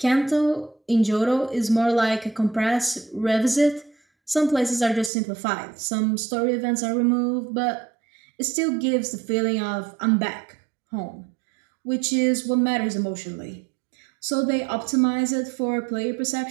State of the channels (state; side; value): drops out; left; at 5.1 s